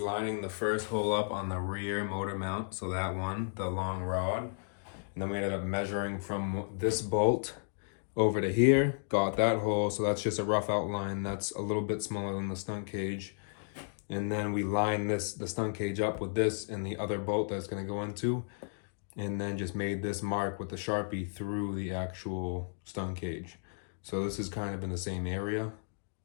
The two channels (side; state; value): right; silent; digital silence